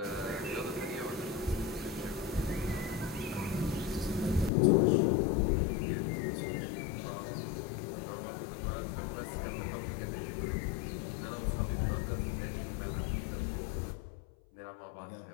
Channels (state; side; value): drops out; right; at 4.5 s